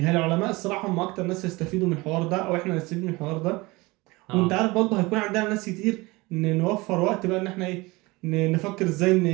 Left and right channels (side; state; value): left; quieter; 22.8 dB